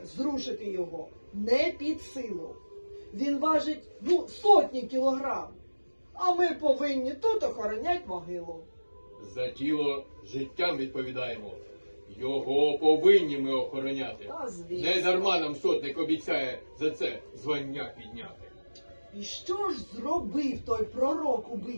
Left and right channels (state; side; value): inverted; both; correlation -1.00